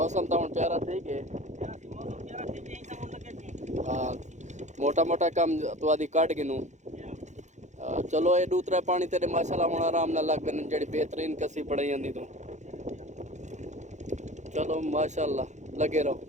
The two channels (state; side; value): late; left; 0.34 ms